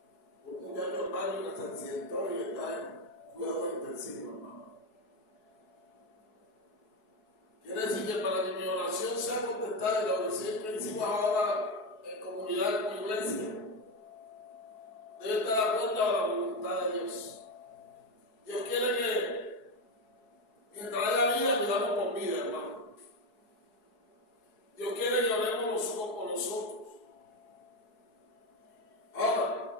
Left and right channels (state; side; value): late; right; 4.7 ms